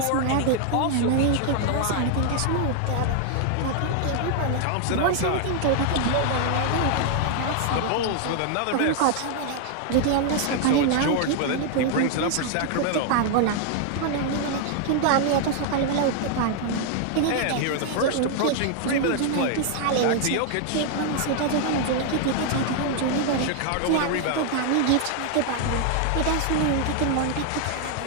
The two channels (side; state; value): both; different; correlation 0.00